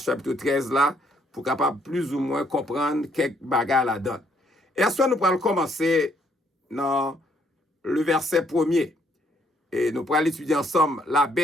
chapitre 13 là, pour capable plus ou moins comprendre quelques bagages là-dedans. Et à ce nous pourrons commencer dans le verset 1er. Et nous pourrons étudier ensemble la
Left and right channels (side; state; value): both; normal; correlation 0.69